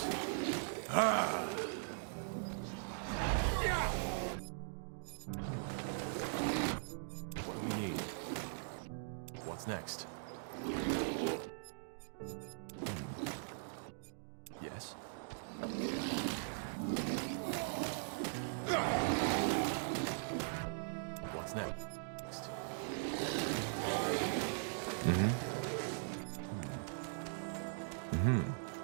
What do we need? What's next? Yes. What's next?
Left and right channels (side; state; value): left; silent; digital silence